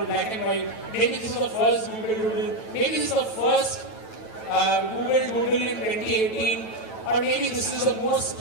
black and white. Maybe this is the first Google Doodle. Maybe this is the first Google Doodle in 2018. Or maybe this is the most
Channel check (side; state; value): right; late; 9.1 ms